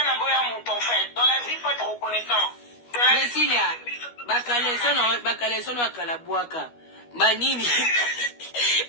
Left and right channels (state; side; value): late; right; 12 ms